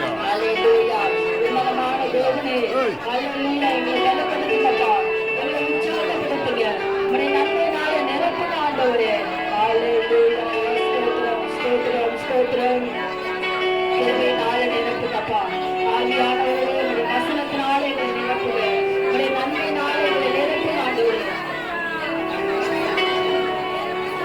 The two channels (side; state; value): left; noise; rumble, 27 dB below the sound